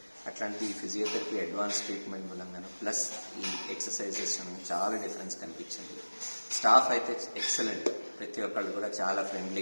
అట్లాంటి ఫిజియోథెరపీ అడ్వాన్స్ ట్రీట్మెంట్ మూలంగాను ప్లస్ ఈ ఎక్సర్సైజెస్ చాలా డిఫరెన్స్ కనిపించింది. స్టాఫ్ అయితే ఎక్సలెంట్. ప్రతి ఒక్కళ్ళు కూడా చాలా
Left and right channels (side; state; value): both; inverted; correlation -1.00